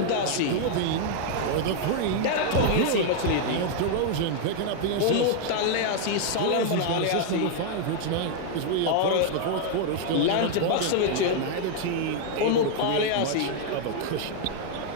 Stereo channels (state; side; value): different; both; correlation 0.00